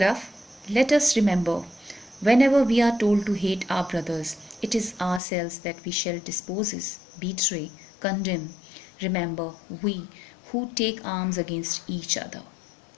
Let us remember, whenever we are told to hate our brothers, it is ourselves that we shall dispose, betray, condemn. Remember, we who take arms against each other.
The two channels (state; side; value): drops out; right; at 5.2 s